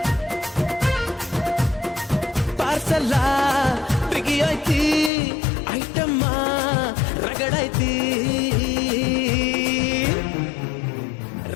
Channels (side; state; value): right; drops out; at 5.1 s